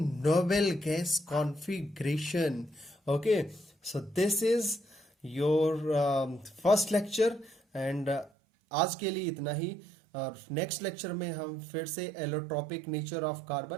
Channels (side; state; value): left; drops out; at 8.3 s